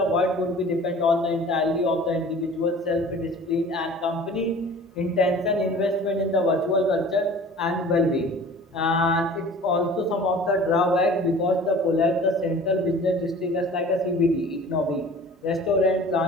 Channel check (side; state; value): both; normal; correlation 0.44